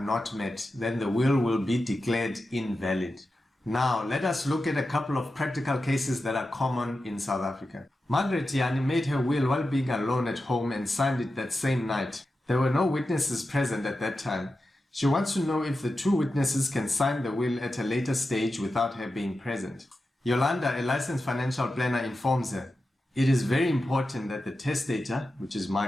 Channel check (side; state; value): both; normal; correlation 0.91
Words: met, then the will be declared invalid. Now, let us look at a couple of practical cases that are common in South Africa. Margaret Yani made her will while being alone at home and signed it that same night. There were no witnesses present at that time. She wants to know if the two witnesses can sign the will at a later stage without her being present. Yolanda, a licensed financial planner, informs her. It is very important that the testator, which is